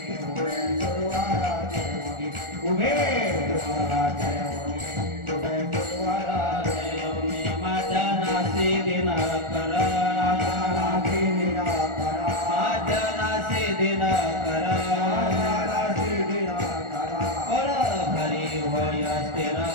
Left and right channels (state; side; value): late; left; 1.4 ms